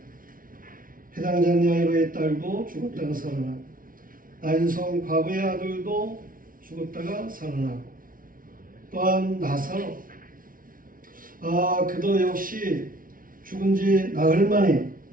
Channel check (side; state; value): left; late; 0.40 ms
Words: 회당장 야이로의 딸도 죽었다가 살아나고 나인성 과부의 아들도 죽었다가 살아나고 또한 나사로 그도 역시 죽은 지 나흘 만에